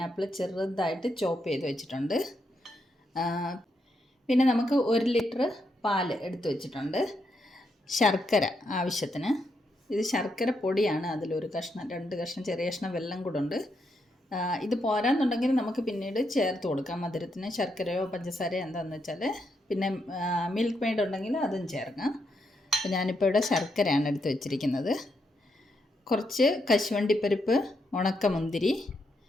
ചെറുതായിട്ട് ചോപ്പ് ചെയ്ത് വെച്ചിട്ടുണ്ട്. പിന്നെ നമുക്ക് 1 ലിറ്റർ പാൽ എടുത്ത് വെച്ചിട്ടുണ്ട്. ശർക്കര ആവശ്യത്തിന്. ഇത് ശർക്കര പൊടിയാണ്. അതിലൊരു കഷ്ണം, 2 കഷ്ണം, ചെറിയ കഷ്ണം വെള്ളം കൂടെ ഉണ്ട്. ഇത് പോരാന്നുണ്ടെങ്കിൽ നമുക്ക് പിന്നീട് ചേർത്ത് കൊടുക്കാം മധുരത്തിന്. ശർക്കരയോ പഞ്ചസാരയോ എന്താണെന്ന് വെച്ചാൽ. പിന്നെ മിൽക്ക് മെയ്ഡ് ഉണ്ടെങ്കിൽ അതും ചേർക്കാം. അപ്പോൾ ഞാനിപ്പോൾ ഇവിടെ ശർക്കരയാണ് എടുത്ത് വെച്ചിരിക്കുന്നത്. കുറച്ച് കശുവണ്ടിപ്പരിപ്പ്, ഉണക്കമുന്തിരി,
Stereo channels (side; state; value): both; normal; correlation 0.80